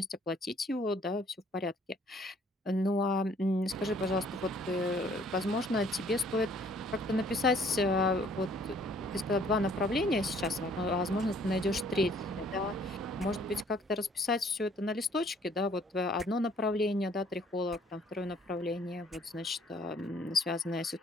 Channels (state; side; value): normal; both; correlation 0.60